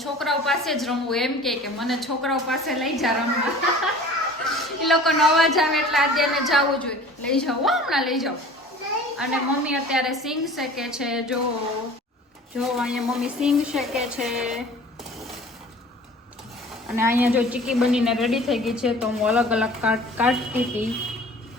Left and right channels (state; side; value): normal; both; correlation 0.45